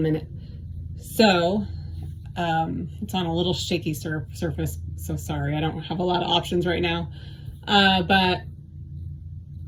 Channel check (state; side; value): identical; both; correlation 1.00